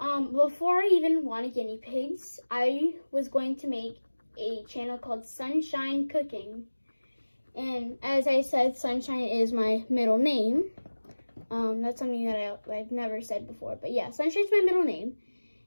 I even wanted guinea pigs, I was going to make a channel called Sunshine Cooking. And as I said, Sunshine is my middle name. That's something that I've never said before. But yeah, Sunshine's my middle name.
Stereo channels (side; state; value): both; inverted; correlation -1.00